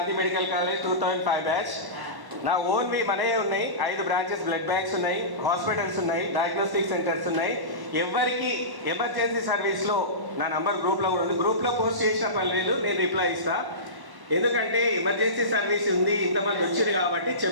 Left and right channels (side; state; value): left; late; 1.1 ms